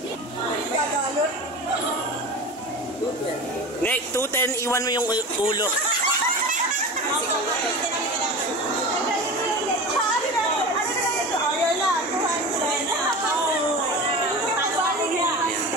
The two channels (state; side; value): normal; both; correlation 0.31